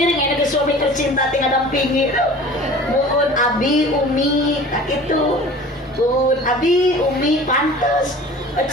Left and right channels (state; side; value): normal; both; correlation 0.42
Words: ya ke suami tercinta tinggal dampingi mun abi umi tak gitu mun abi umi pantes